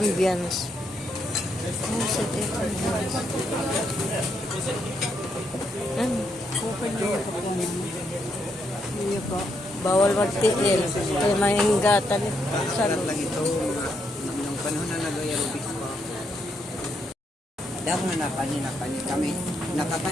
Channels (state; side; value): normal; both; correlation 0.77